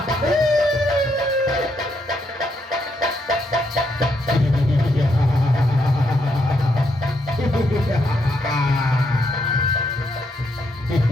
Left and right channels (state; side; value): normal; both; correlation 0.77